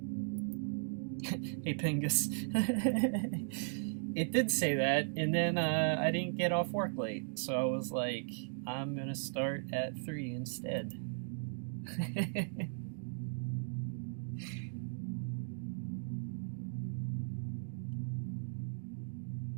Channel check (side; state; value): left; silent; digital silence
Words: Hey Pingus. It did say that, and then I didn't get off work late, so I was like, I'm gonna start at 3 instead.